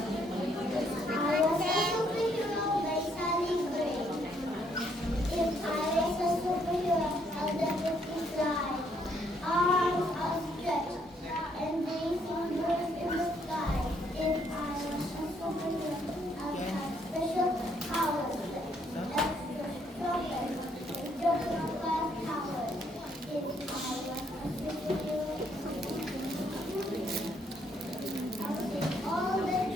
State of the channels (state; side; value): normal; both; correlation 0.70